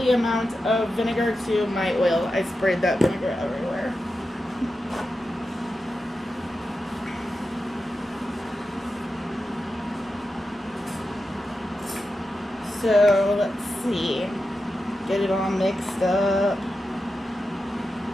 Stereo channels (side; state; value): both; normal; correlation 0.90